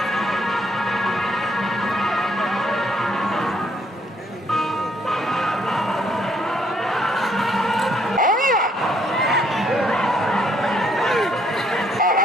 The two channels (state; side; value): normal; both; correlation 0.68